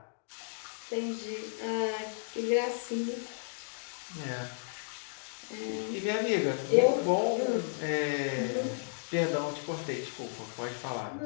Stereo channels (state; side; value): silent; right; digital silence